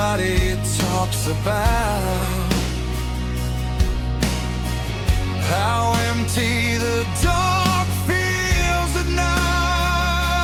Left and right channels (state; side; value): identical; both; correlation 1.00